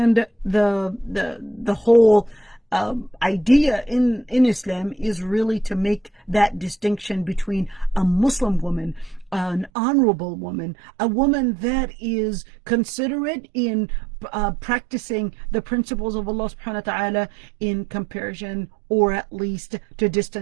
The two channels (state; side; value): drops out; left; at 9.7 s